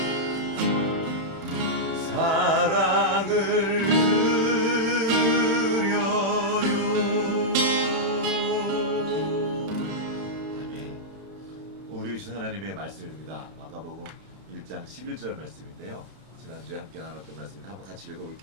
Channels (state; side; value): late; left; 31 ms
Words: 사랑을 드려요. 아멘. 우리 주신 하나님의 말씀입니다. 마가복음 1장 11절 말씀인데요. 지난주에 함께 나눴던 말씀인데 한번 같이